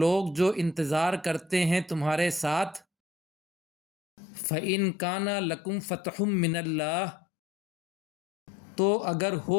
جو انتظار کرتے ہیں تمہارے ساتھ۔ فَإِن كَانَ لَكُمْ فَتْحٌ مِّنَ اللَّهِ، تو اگر ہو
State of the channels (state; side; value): drops out; right; at 2.9 s